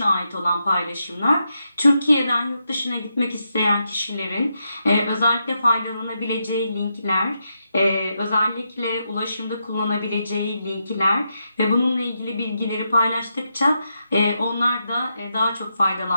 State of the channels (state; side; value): inverted; both; correlation -0.84